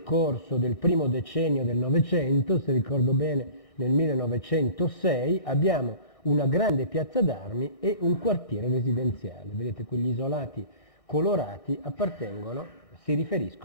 corso del primo decennio del Novecento, se ricordo bene nel 1906, abbiamo una grande piazza d'armi e un quartiere residenziale. Vedete, quegli isolati colorati si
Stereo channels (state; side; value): late; right; 2.6 ms